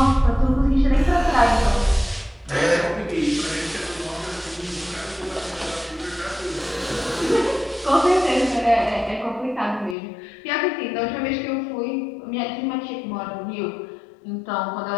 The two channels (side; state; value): right; drops out; at 10.0 s